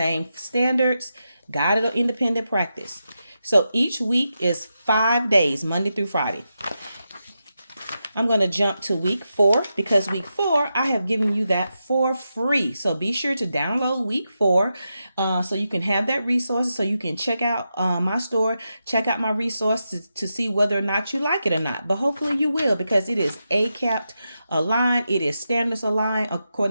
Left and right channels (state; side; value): inverted; both; correlation -0.88